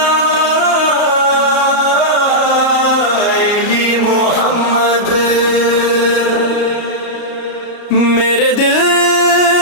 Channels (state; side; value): late; right; 33 ms